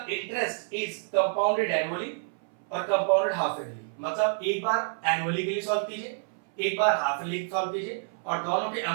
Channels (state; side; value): silent; left; 59 dB below the other